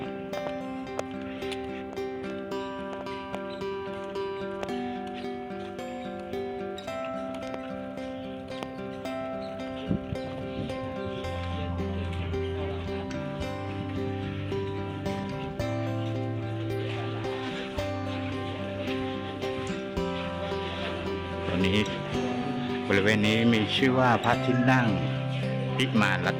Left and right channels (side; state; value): both; identical; correlation 1.00